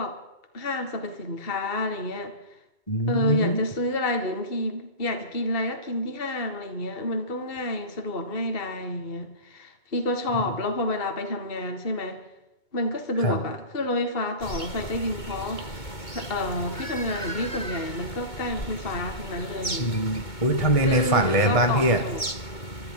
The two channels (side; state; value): right; late; 2.2 ms